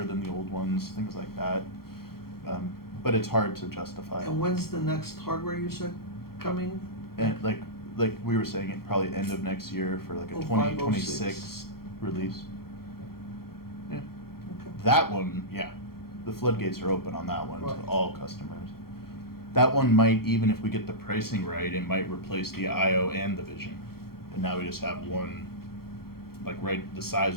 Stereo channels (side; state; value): right; late; 0.94 ms